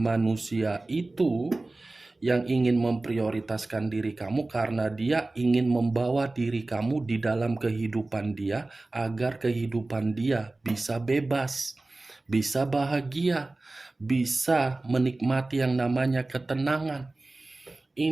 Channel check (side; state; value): left; quieter; 3.0 dB